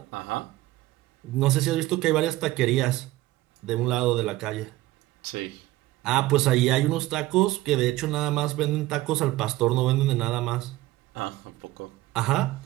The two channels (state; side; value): quieter; left; 17.3 dB